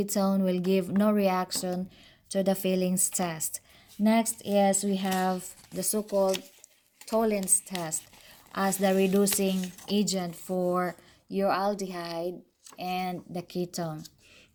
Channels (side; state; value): both; identical; correlation 1.00